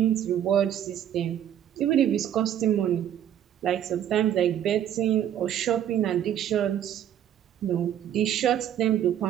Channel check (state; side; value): quieter; left; 10.4 dB